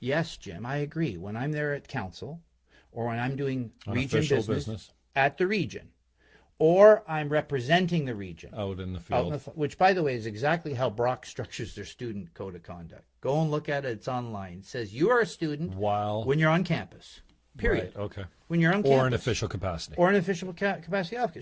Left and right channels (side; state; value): both; identical; correlation 1.00